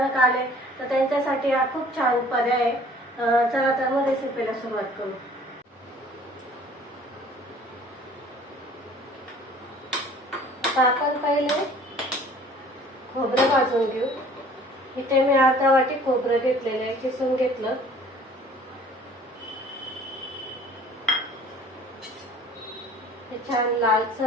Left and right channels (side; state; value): both; normal; correlation 0.51